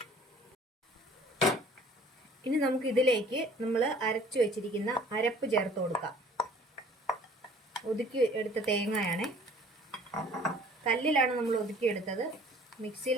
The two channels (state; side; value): normal; both; correlation 0.52